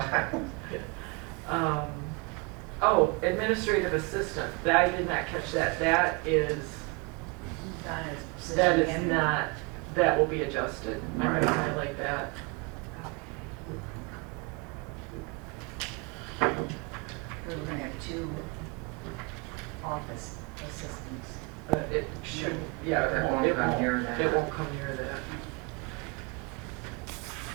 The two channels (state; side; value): quieter; left; 28.5 dB